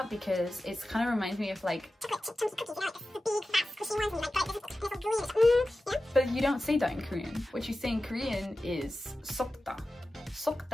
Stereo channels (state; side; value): normal; both; correlation 0.94